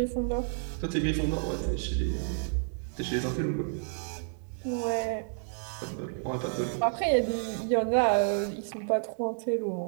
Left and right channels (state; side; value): silent; left; digital silence